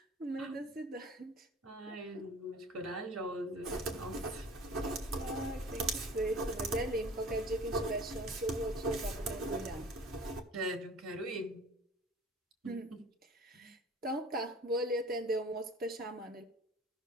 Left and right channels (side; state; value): both; normal; correlation 0.45